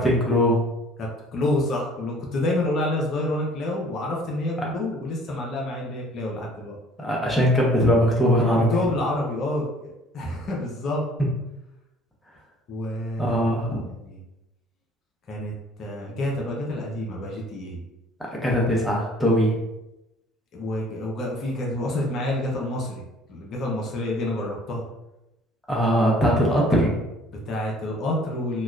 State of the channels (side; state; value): both; normal; correlation 0.54